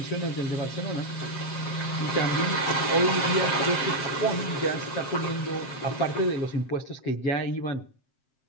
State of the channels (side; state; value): right; late; 7.6 ms